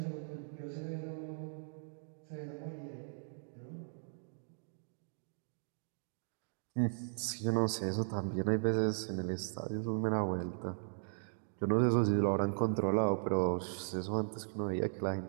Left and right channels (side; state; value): left; silent; digital silence